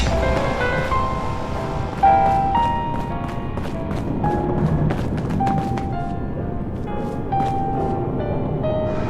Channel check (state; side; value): identical; both; correlation 1.00